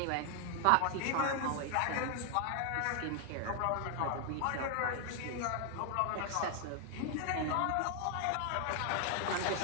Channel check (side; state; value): both; different; correlation 0.00